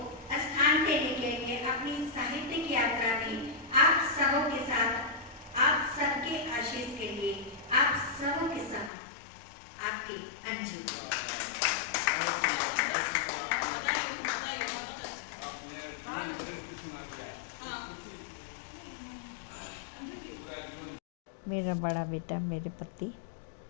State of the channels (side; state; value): right; drops out; at 8.9 s